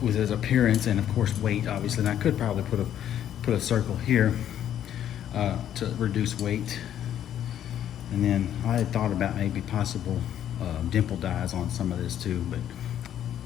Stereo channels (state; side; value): quieter; right; 10.5 dB